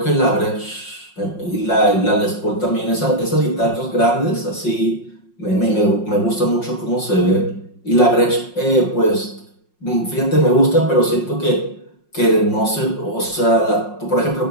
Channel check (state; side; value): late; right; 5.5 ms